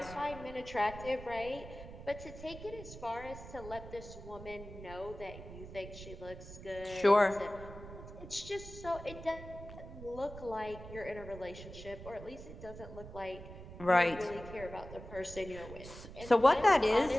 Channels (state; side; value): noise; right; rumble, 13 dB below the sound